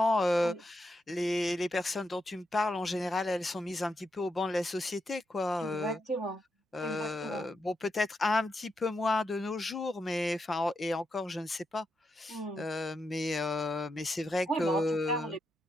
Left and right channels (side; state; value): both; normal; correlation 0.84